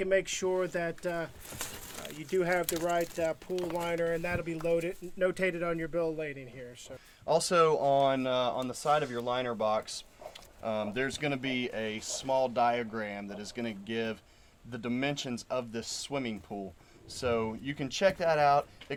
and make sure that you do have the right pool liner, and that'll be notated on your bill of lading here. So also on the side of your liner box, there's going to be a small diagram that is going to give the dimensions of this swimming pool. So you can check that out. It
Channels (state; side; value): identical; both; correlation 1.00